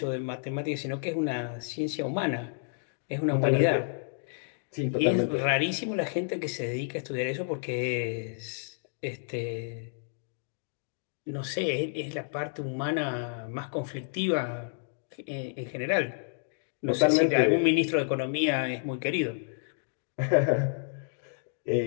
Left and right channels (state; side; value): silent; right; digital silence